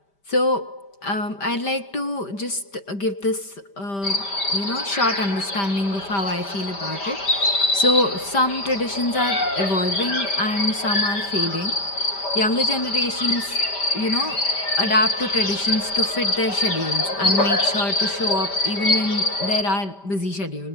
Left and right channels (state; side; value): late; right; 5.1 ms